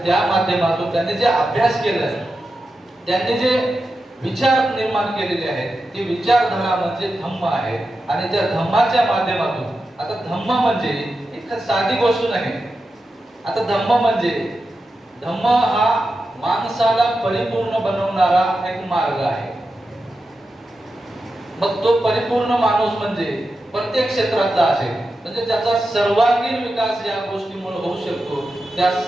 त्या माध्यमातून त्यांनी जे अभ्यास केलाय, त्यांनी जे विचार निर्माण केलेले आहेत, ती विचारधारा म्हणजे धम्म आहे. आणि त्या धम्माच्या माध्यमातून, आता धम्म म्हणजे एक साधी गोष्ट नाही. आता धम्म हा माणसाला परिपूर्ण बनवणारा एक मार्ग आहे. मग तो परिपूर्ण माणूस म्हणजे प्रत्येक क्षेत्रातला असेल, म्हणजे त्याचा सर्वांगीण विकास या गोष्टीमुळे होऊ शकतो. त्या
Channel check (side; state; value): both; normal; correlation 0.90